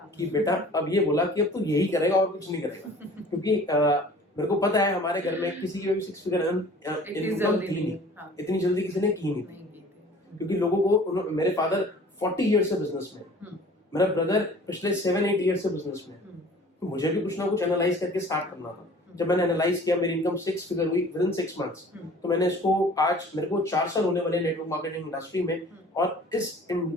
कि बेटा अब ये बोला कि अब तू यही करेगा और कुछ नहीं करेगा। क्योंकि मेरे को पता है हमारे घर में किसी की भी 6 फिगर इनकम थी नहीं, इतनी जल्दी किसी ने की नहीं। क्योंकि लोगों को, मेरे फादर 40 ईयर से बिजनेस में, मेरा ब्रदर पिछले 7-8 ईयर से बिजनेस में, तो मुझे भी कुछ ना कुछ एनालाइज करके स्टार्ट करना था। जब मैंने एनालाइज किया, मेरी इनकम 6 फिगर हुई विद इन 6 मंथ्स। तो मैंने इसको, आज मेरे को 4 साल होने वाले नेटवर्क मार्केटिंग इंडस्ट्री में, और इस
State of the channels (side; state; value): both; normal; correlation 0.48